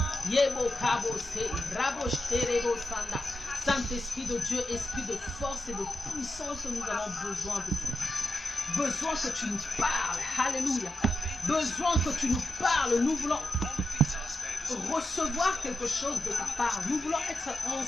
Yebo Kabo Se, Rabo Shterebo Sanda. Saint-Esprit de Dieu, esprit de force et de puissance, nous avons besoin de toi. Besoin que tu nous parles. Alléluia. Besoin que tu nous parles. Nous voulons recevoir quelque chose de ta part. Nous voulons être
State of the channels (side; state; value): both; normal; correlation 0.89